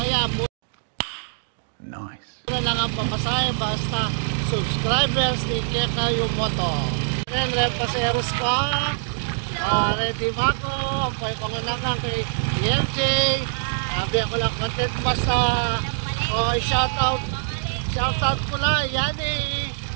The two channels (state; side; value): silent; left; digital silence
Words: nice. Ano lang ang papasahe, basta subscribers ni Kekayo Moto. Then, repaseros ko. Ready ba ako? Ang pangilangan kay EMJ. Sabi ako lang content basta. Shoutout ko lang. Yan eh.